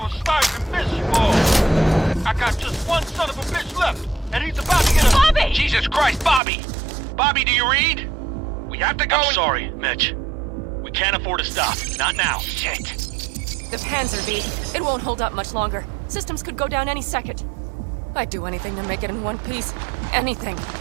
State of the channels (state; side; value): drops out; left; at 6.4 s